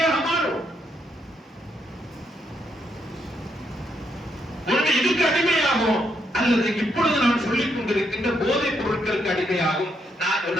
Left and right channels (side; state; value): both; normal; correlation 0.76